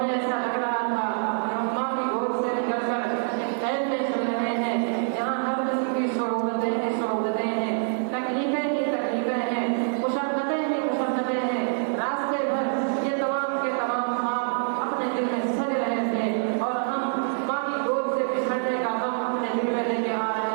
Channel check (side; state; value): left; silent; 60 dB below the other